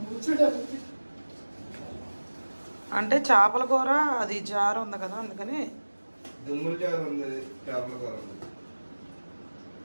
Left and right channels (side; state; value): both; inverted; correlation -1.00